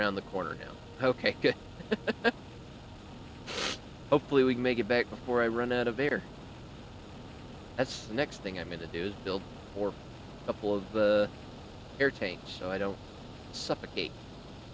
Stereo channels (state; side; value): identical; both; correlation 1.00